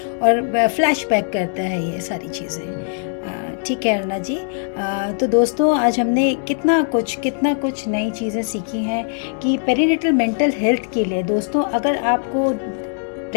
और फ्लैशबैक करता है ये सारी चीज़ें। ठीक है अरुणा जी तो दोस्तों आज हमने कितना कुछ नई चीज़ें सीखी हैं कि पेरीनेटल मेंटल हेल्थ के लिए। दोस्तों अगर आपको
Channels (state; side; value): silent; right; digital silence